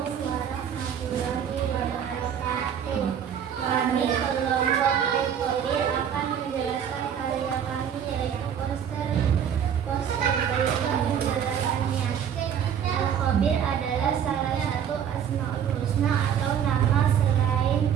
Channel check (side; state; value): left; quieter; 8.6 dB